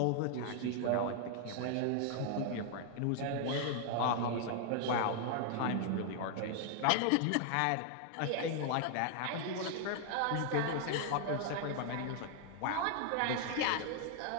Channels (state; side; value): different; both; correlation 0.00